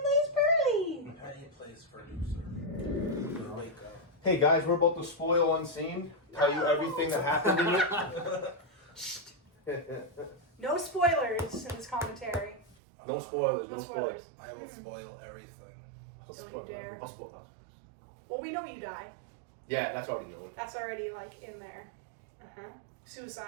plays Pearly! Penny plays producer. Wake up. Hey guys, we're about to spoil UnSeen. Tell you everything that happened in it. No spoilers in this commentary. No spoilers, No no spoilers. spoilers. I will spoil everything. Don't you dare. I'll spoil that. Well, we know you die. Yeah, that's already known. That's already, like, in there.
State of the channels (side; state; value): left; drops out; at 12.8 s